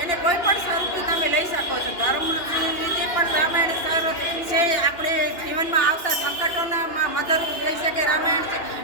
એને કોઈ પણ સ્વરૂપથી તમે લઈ શકો છો. ધર્મની રીતે પણ રામાયણ સર છે. આપણે જીવનમાં આવતા સંકટોના મદદરૂપ થઈ શકે રામાયણ છે.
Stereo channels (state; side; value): late; right; 2.9 ms